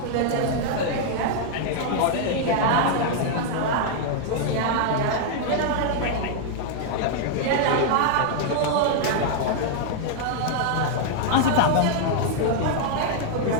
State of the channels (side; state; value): both; different; correlation 0.00